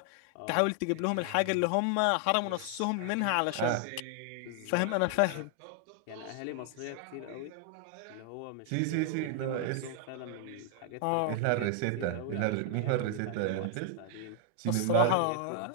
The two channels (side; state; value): both; different; correlation 0.00